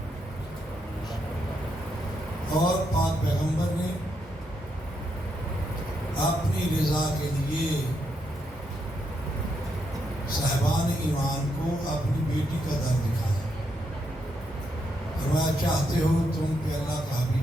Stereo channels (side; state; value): both; normal; correlation 0.80